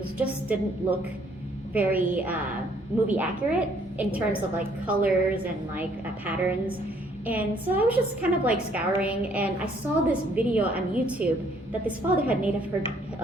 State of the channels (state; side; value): normal; both; correlation 0.64